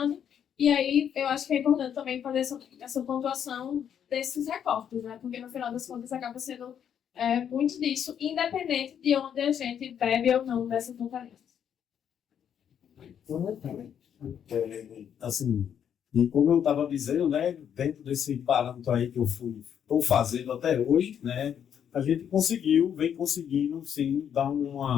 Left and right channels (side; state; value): right; quieter; 8.7 dB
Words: E aí eu acho que é importante também fazer essa pontuação desses recortes, né? Porque no final das contas acaba sendo muito disso, independente de onde a gente bebe ou não dessas referências. Assim, e como eu estava dizendo, né, dentro desse parâmetro aí que eu estou fazendo até hoje, né, a gente vem conseguindo, sim, dar